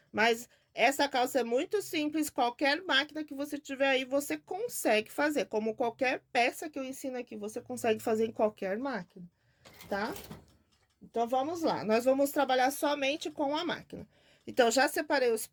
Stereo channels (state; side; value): identical; both; correlation 1.00